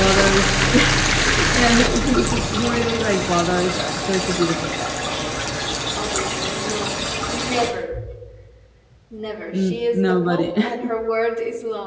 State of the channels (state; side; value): identical; both; correlation 1.00